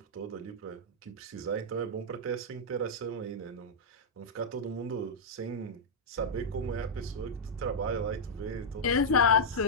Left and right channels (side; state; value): both; normal; correlation -0.06